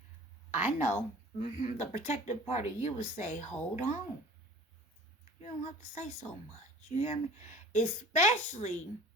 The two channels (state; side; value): normal; both; correlation 0.46